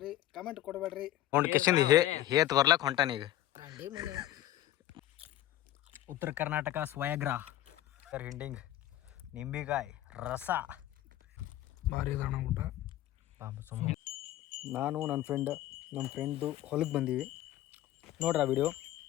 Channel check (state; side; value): quieter; right; 13.8 dB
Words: ಕಮೆಂಟ್ ಕೊಡಬೇಡ್ರಿ. ಹೇತ್ ಬರ್ಲಕ್ ಹೊಂಟಾನೀಗ. ಉತ್ತರ ಕರ್ನಾಟಕ ಸ್ವಯಗ್ರ ಹಿಂಡಿಂಗ್ ನಿಂಬಿಕಾಯಿ ರಸ ಭಾರಿ ಇದಣ್ಣ ಊಟ. ನಾನು ನಮ್ಮ ಫ್ರೆಂಡ್ದು ಹೊಲಕ್ಕೆ ಬಂದೀವಿ ನೋಡ್ರಿ ಆ ವಿಡಿಯೋ.